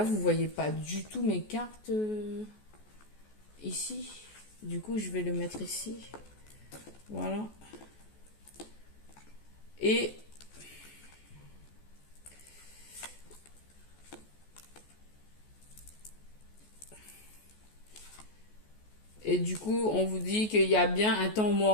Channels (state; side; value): late; right; 14 ms